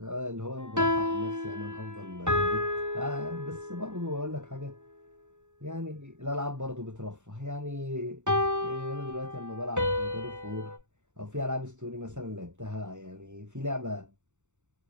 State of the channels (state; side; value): late; left; 0.84 ms